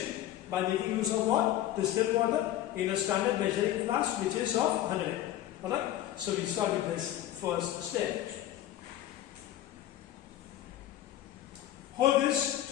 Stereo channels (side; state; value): right; quieter; 13.1 dB